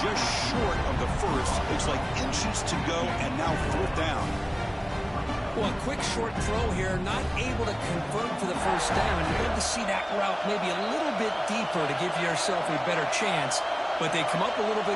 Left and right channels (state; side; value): identical; both; correlation 1.00